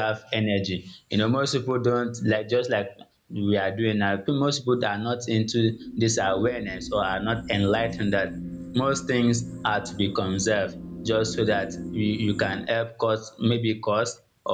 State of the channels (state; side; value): identical; both; correlation 1.00